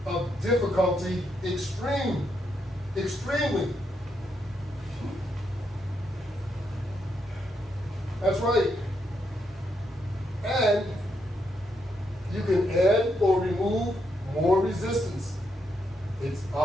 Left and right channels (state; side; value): normal; both; correlation 0.79